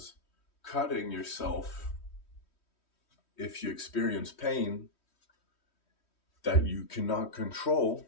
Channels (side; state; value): right; late; 3.1 ms